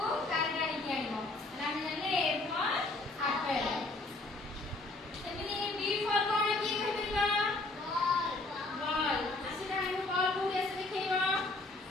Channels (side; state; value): right; quieter; 3.1 dB